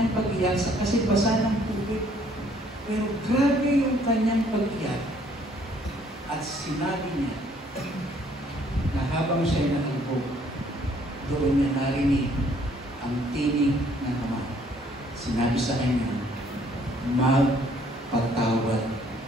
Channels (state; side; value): normal; both; correlation 0.62